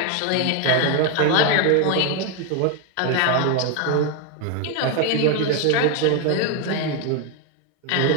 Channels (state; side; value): different; both; correlation 0.01